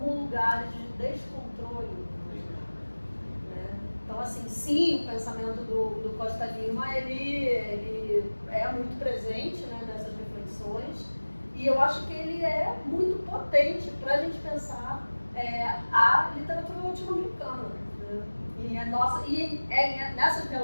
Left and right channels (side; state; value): both; inverted; correlation -1.00